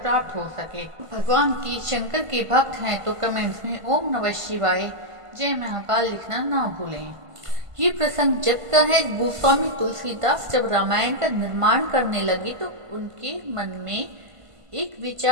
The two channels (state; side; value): late; left; 1.5 ms